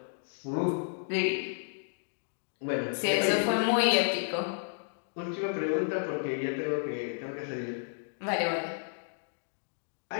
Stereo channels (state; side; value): silent; right; digital silence